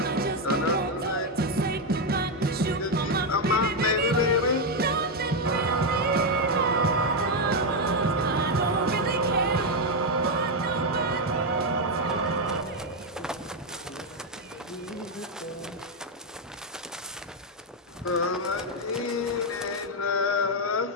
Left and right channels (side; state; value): both; normal; correlation 0.04